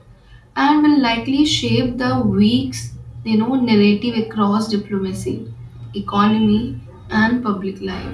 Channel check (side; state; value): both; identical; correlation 1.00